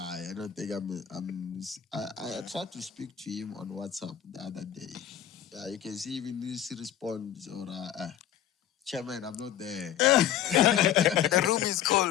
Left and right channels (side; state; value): right; quieter; 10.7 dB